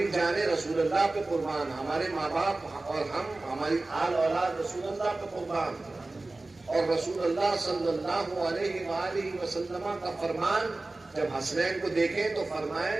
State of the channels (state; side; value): quieter; left; 3.1 dB